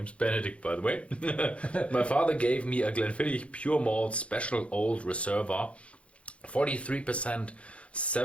Benedict, by the way. My father gave me a Glenfiddich Pure Malt Special Old Reserva, 43%.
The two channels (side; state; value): right; late; 0.061 ms